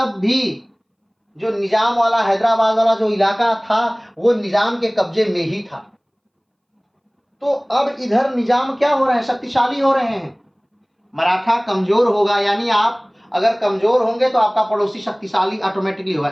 भी जो निजाम वाला, हैदराबाद वाला जो इलाका था वो निजाम के कब्जे में ही था। तो अब इधर निजाम क्या हो रहे हैं? शक्तिशाली हो रहे हैं। मराठा कमजोर होगा, यानी आप अगर कमजोर होंगे तो आपका पड़ोसी शक्तिशाली ऑटोमेटिकली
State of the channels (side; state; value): both; identical; correlation 1.00